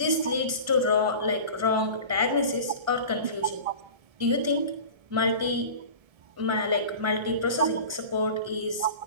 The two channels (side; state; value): left; late; 1.3 ms